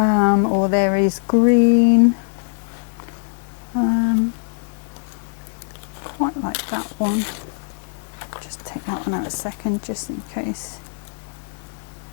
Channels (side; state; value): right; silent; digital silence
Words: there is green, quite like that one. Just take that one out a second just in case.